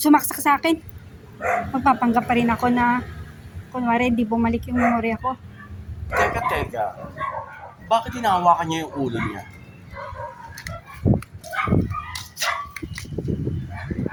sa akin. Magpapanggap pa rin ako na kunwari di bumalik yung memorya ko. Teka. Bakit hinahawakan niya yung ulo niya?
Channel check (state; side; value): identical; both; correlation 1.00